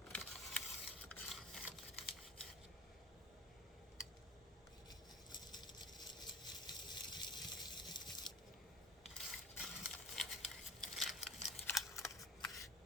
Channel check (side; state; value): both; normal; correlation 0.38